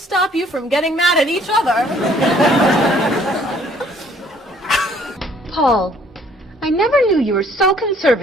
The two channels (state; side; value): normal; both; correlation 0.60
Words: you from getting mad at each other. Paul, I never knew you were so